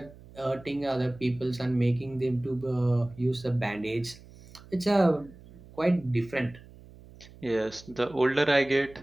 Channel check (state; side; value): noise; right; hum, 21 dB below the sound